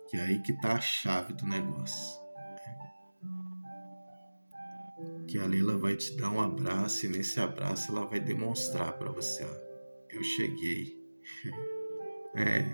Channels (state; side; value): inverted; both; correlation -1.00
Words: Que é aí que tá a chave do negócio. Que a Leila vai te dar um abraço e nesse abraço ela vai demonstrar para você, eu cheguei.